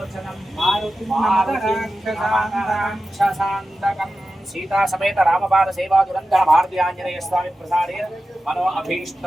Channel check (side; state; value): both; normal; correlation 0.93